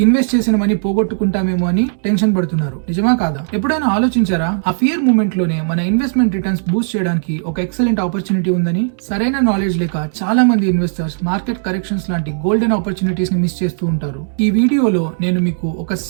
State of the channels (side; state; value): left; silent; 69 dB below the other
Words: ఇన్వెస్ట్ చేసిన మనీ పోగొట్టుకుంటామేమో అని టెన్షన్ పడుతున్నారు. నిజమా కాదా? ఎప్పుడైనా ఆలోచించారా ఆ ఫియర్ మూమెంట్ లోనే మన ఇన్వెస్ట్మెంట్ రిటర్న్స్ బూస్ట్ చేయడానికి ఒక ఎక్సలెంట్ ఆపర్చునిటీ ఉందని? సరైన నాలెడ్జ్ లేక చాలా మంది ఇన్వెస్టర్స్ మార్కెట్ కరెక్షన్స్ లాంటి గోల్డెన్ ఆపర్చునిటీస్ ని మిస్ చేస్తూ ఉంటారు. ఈ వీడియోలో నేను మీకు ఒక